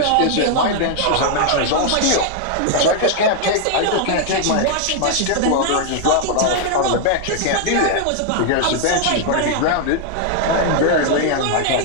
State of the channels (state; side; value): different; both; correlation 0.00